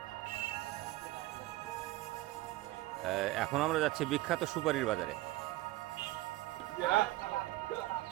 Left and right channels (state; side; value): quieter; left; 17.8 dB